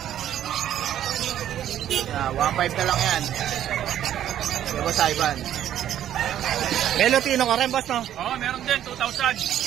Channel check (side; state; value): left; quieter; 11.1 dB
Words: 1.5 na lang yan. Kay Boss Ivan. May Lutino ka rin, boss, no? Oo, meron din,